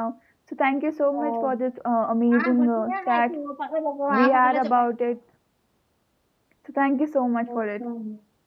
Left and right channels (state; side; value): identical; both; correlation 1.00